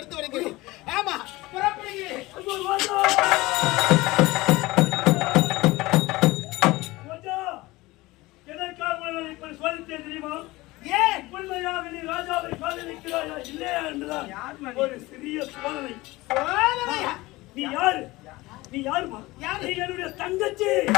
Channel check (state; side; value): quieter; right; 20.3 dB